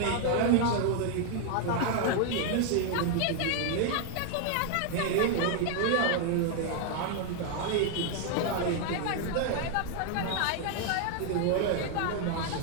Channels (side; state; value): both; different; correlation 0.00